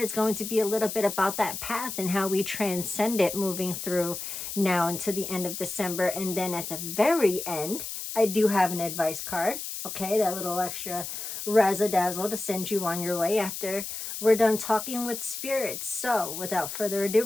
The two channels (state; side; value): noise; left; hiss, 7 dB below the sound